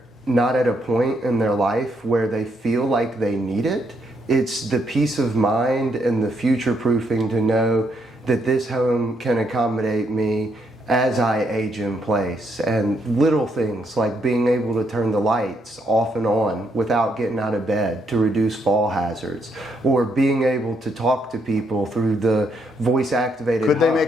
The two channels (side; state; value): both; normal; correlation 0.75